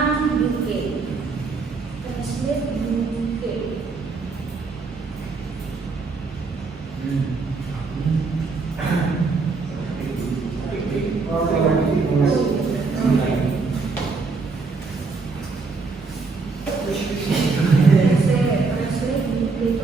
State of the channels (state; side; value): quieter; left; 4.3 dB